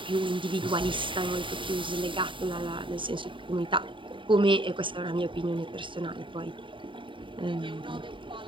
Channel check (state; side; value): late; left; 0.24 ms